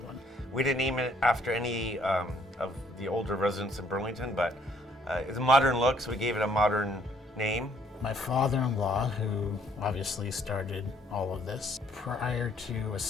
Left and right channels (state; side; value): normal; both; correlation 0.64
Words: one. We didn't name it after any of the older residents in Burlington, but it's a modern look, so we gave it a modern name. My father-in-law, who obviously started all of this, prior to